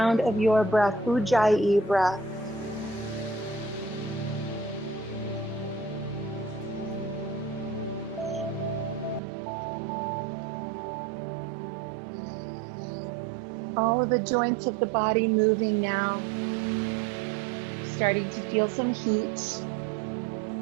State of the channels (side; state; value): left; drops out; at 9.2 s